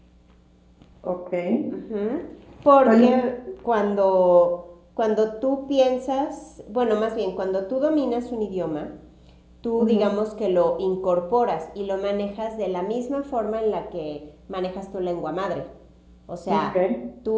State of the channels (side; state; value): both; identical; correlation 1.00